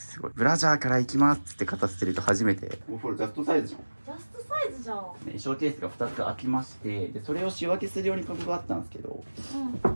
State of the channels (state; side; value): inverted; both; correlation -1.00